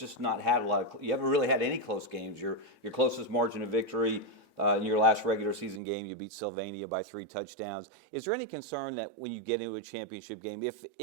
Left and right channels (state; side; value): drops out; left; at 5.8 s